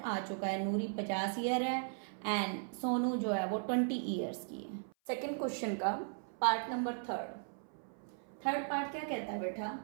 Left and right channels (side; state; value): left; silent; 53 dB below the other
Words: चुका है, नूरी 50 ईयर है एंड सोनू जो है वो 20 ईयर्स की है। सेकेंड क्वेश्चन का पार्ट नंबर थर्ड पार्ट क्या कहता है बेटा,